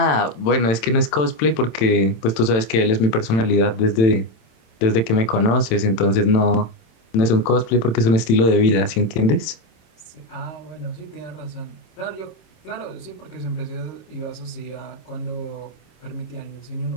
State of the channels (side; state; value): right; late; 27 ms